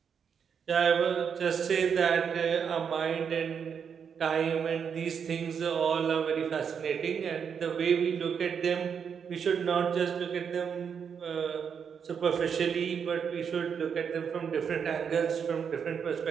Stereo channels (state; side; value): quieter; left; 7.0 dB